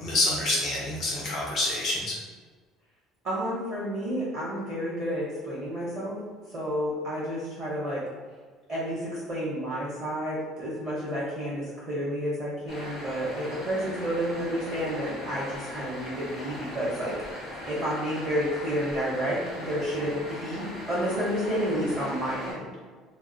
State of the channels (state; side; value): normal; both; correlation 0.53